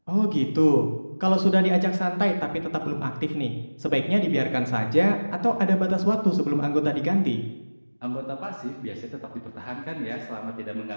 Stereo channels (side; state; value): both; inverted; correlation -1.00